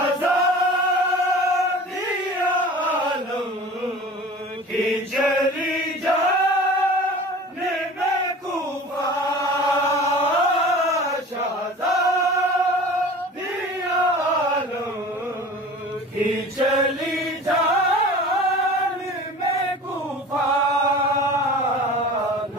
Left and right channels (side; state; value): both; normal; correlation 0.40